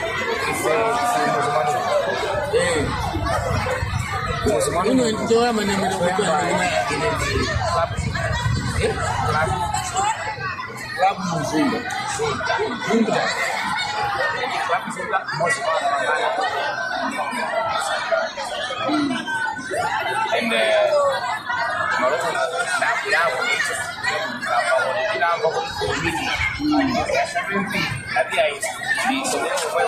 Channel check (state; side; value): identical; both; correlation 1.00